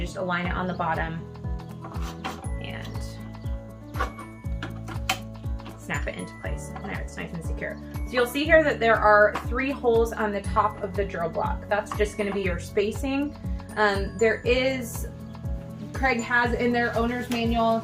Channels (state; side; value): identical; both; correlation 1.00